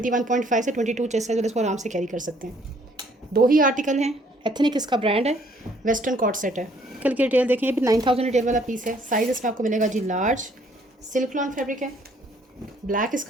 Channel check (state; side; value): normal; both; correlation 0.63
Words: से 22 चेस्ट साइज़ वाले इसको आराम से कैरी कर सकते हैं। 2 ही आर्टिकल हैं। एथनिक इसका ब्रांड है। वेस्टर्न कॉट सेट है। कल की रिटेल देखें, ये भी 9000 रिटेल वाला पीस है। साइज़ इसमें आपको मिलेगा जी लार्ज। सिल्क लॉन फैब्रिक है, ब्लैक